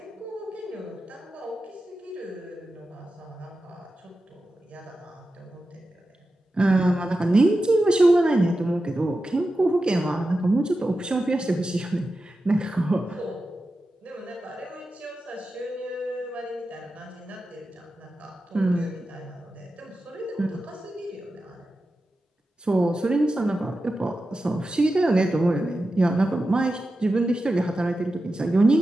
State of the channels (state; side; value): normal; both; correlation 0.92